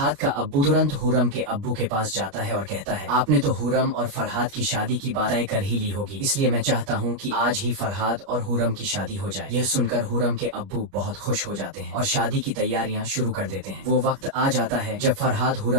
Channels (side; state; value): left; late; 29 ms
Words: का अब्बू तुरंत हुरम के अब्बू के पास जाता है और कहता है, आपने तो हुरम और फरहाद की शादी की बात तय कर ही ली होगी, इसलिए मैं चाहता हूँ कि आज ही फरहाद और हुरम की शादी हो जाए। यह सुनकर हुरम के अब्बू बहुत खुश हो जाते हैं और शादी की तैयारियां शुरू कर देते हैं। वो वक्त आ जाता है जब फरहाद